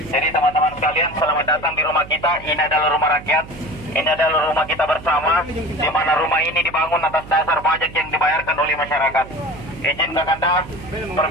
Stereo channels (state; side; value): noise; right; hum, 16 dB below the sound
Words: Jadi teman-teman sekalian, selamat datang di rumah kita. Ini adalah rumah rakyat. Ini adalah rumah kita bersama, di mana rumah ini dibangun atas dasar pajak yang dibayarkan oleh masyarakat. Izin Kakanda,